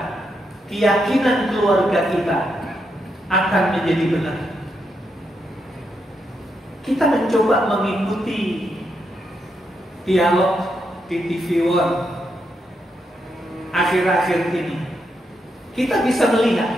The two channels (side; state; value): both; normal; correlation 0.82